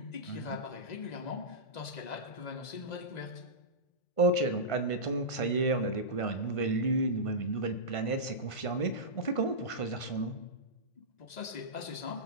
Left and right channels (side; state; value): right; late; 2.0 ms